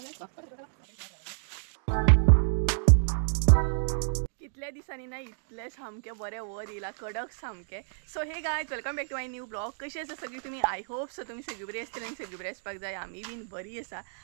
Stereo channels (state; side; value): silent; left; digital silence